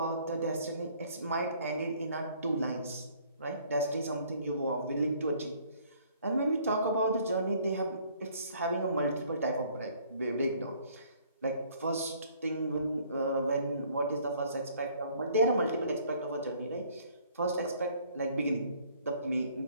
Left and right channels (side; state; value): both; inverted; correlation -0.59